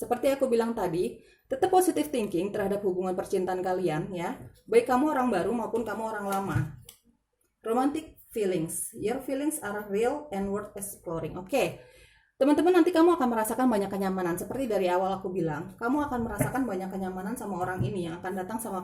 aku bilang tadi, tetap positive thinking terhadap hubungan percintaan kalian ya. Baik kamu orang baru maupun kamu orang lama. Romantic feelings. Your feelings are real and worth exploring. Oke. Teman-teman, nanti kamu akan merasakan banyak kenyamanan. Seperti dari awal aku bilang, kamu akan merasakan banyak kenyamanan sama orang ini yang akan datang sama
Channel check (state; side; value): identical; both; correlation 1.00